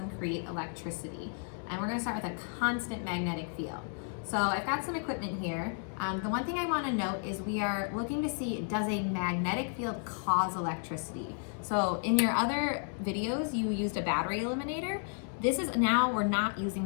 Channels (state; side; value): silent; right; 56 dB below the other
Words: create electricity? And we're going to start with a constant magnetic field. So I've got some equipment here. The one thing I want to note is we are looking to see, does a magnetic field cause electricity? So in your other videos, you used a battery eliminator. We're not using